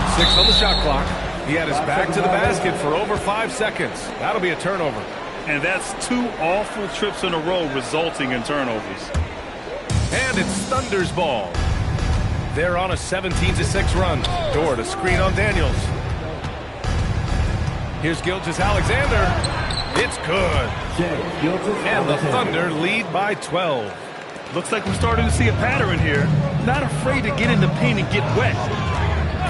6 on the shot clock. He had his back to the basket for over 5 seconds. That'll be a turnover. And that's 2 awful trips in a row resulting in turnovers. And it's Thunder's ball. They're on a 17-6 run. Dort a screen on Daniels. Here's Gilgeous-Alexander. It's good. And the Thunder lead by 12. Looks like we're starting to see a pattern here. Not afraid to get in the paint and get wet.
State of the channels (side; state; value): both; identical; correlation 1.00